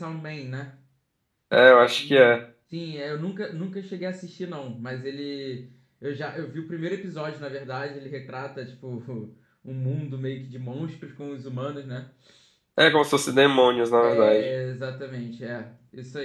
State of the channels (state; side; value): identical; both; correlation 1.00